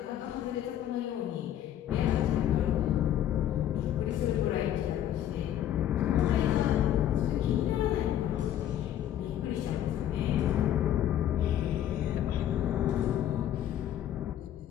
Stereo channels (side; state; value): right; quieter; 11.2 dB